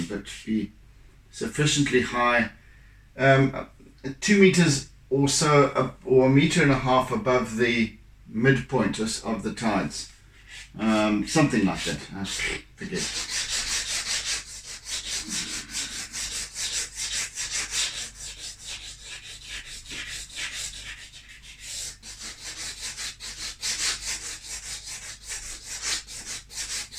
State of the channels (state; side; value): identical; both; correlation 1.00